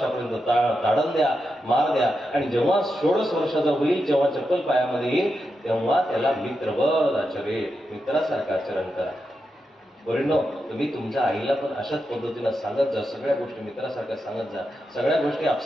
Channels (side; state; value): both; normal; correlation 0.87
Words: ताडण द्या, मार द्या. आणि जेव्हा 16 वर्षाचा होईल, जेव्हा चप्पल पायामध्ये येईल, तेव्हा त्याला मित्रवत आचरे, मित्रासारखं आचरण करा. परिणो, तुम्ही तुमच्या आईला पण अशाच पद्धतीनं सांगत जा, सगळ्या गोष्टी मित्रासारख्या सांगत जा. सगळ्या गोष्टी